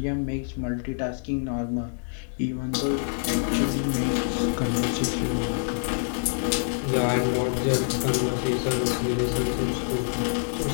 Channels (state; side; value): silent; right; digital silence